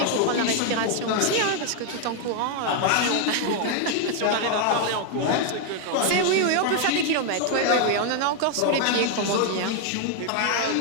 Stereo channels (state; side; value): different; both; correlation 0.00